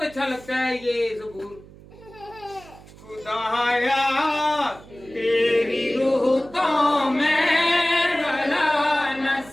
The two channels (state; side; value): noise; right; hum, 21 dB below the sound